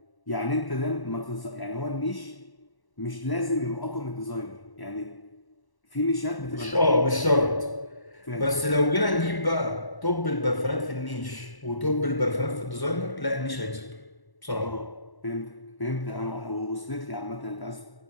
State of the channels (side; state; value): right; late; 1.1 ms